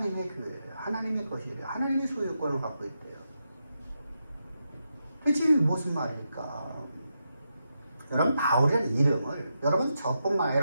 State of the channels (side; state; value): both; inverted; correlation -0.85